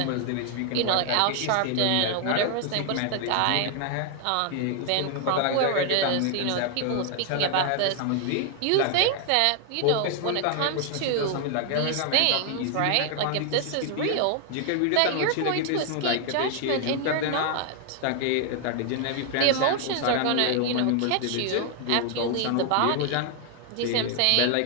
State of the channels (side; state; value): both; different; correlation 0.00